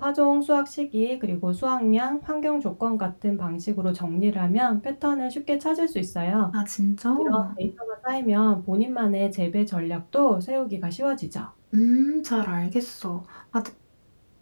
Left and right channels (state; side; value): inverted; both; correlation -1.00